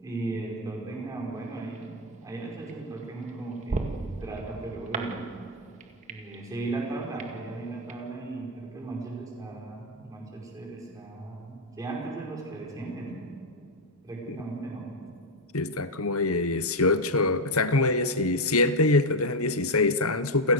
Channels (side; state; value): both; normal; correlation 0.04